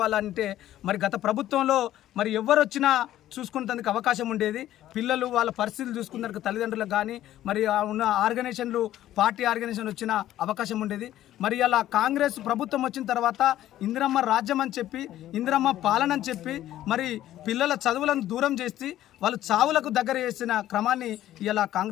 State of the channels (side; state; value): right; quieter; 13.2 dB